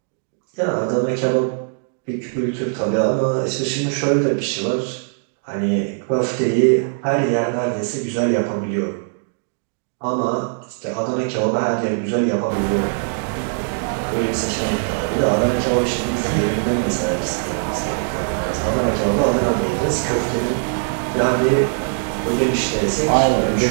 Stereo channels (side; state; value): left; silent; digital silence